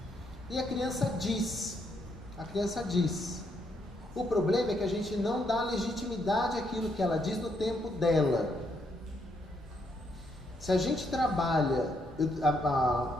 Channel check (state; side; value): normal; both; correlation 0.75